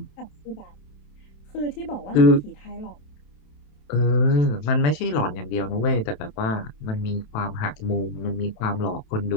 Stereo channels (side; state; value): right; late; 27 ms